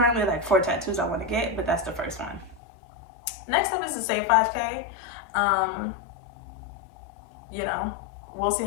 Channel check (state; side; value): drops out; right; at 2.6 s